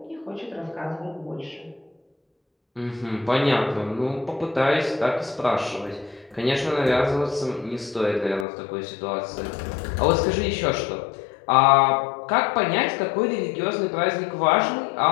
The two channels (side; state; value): right; drops out; at 8.5 s